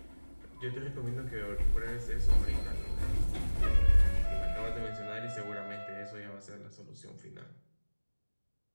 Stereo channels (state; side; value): inverted; both; correlation -1.00